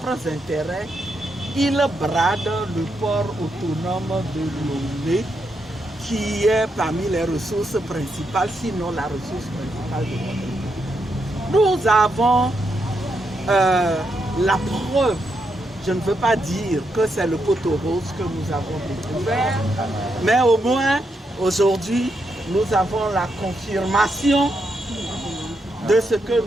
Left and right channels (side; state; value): both; normal; correlation 0.81